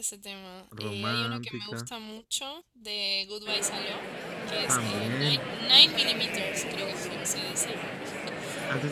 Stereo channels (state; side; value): identical; both; correlation 1.00